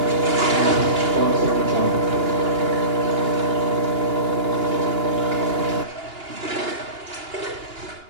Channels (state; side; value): late; left; 2.8 ms